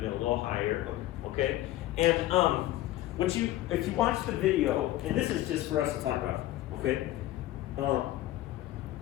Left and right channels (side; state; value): right; quieter; 15.3 dB